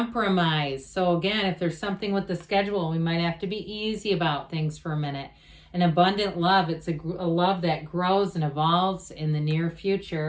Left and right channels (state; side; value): identical; both; correlation 1.00